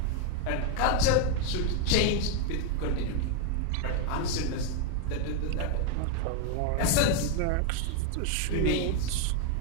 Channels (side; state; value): both; different; correlation 0.01